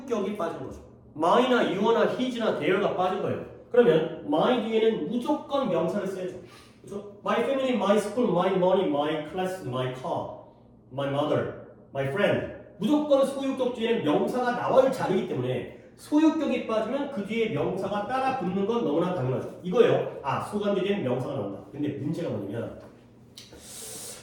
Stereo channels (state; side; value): identical; both; correlation 1.00